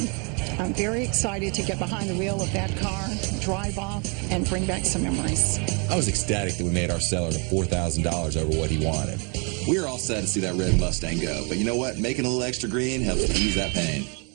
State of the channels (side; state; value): left; quieter; 34.4 dB